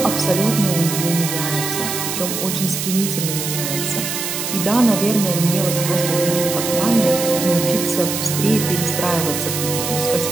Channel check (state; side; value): noise; right; hiss, 4 dB below the sound